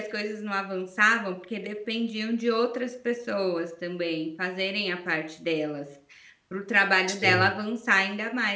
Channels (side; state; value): both; identical; correlation 1.00